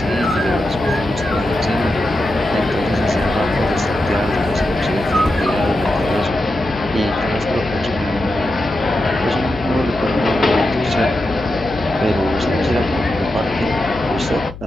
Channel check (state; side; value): noise; left; hum, 14 dB below the sound